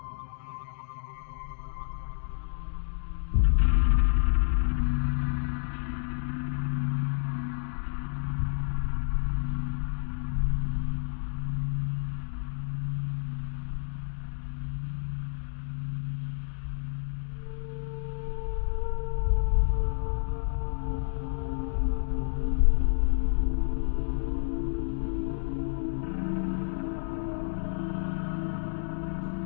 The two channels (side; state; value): right; silent; digital silence